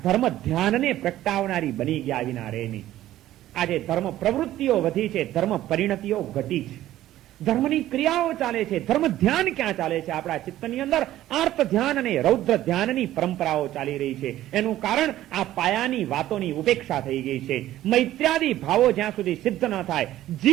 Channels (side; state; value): left; quieter; 13.9 dB